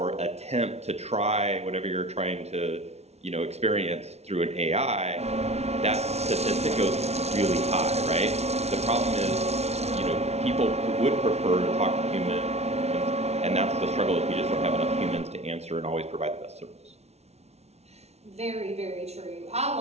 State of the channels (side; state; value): left; late; 0.31 ms